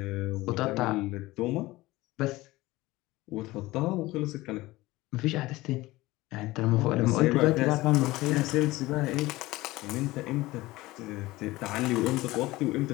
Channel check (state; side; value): quieter; right; 19.2 dB